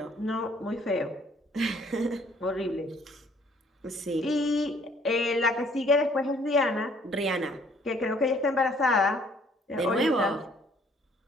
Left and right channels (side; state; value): both; normal; correlation 0.61